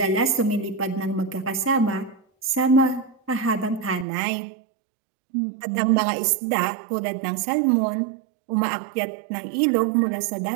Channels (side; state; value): left; drops out; at 4.0 s